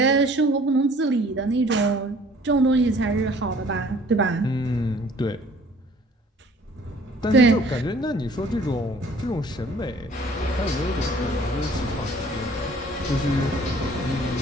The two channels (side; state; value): both; normal; correlation 0.54